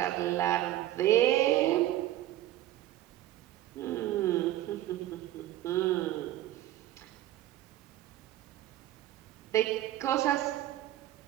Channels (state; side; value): quieter; left; 14.2 dB